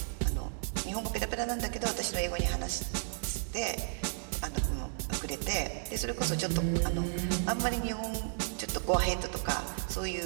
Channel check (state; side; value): silent; left; digital silence